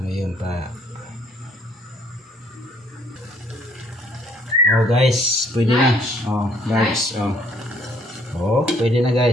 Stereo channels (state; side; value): normal; both; correlation 0.63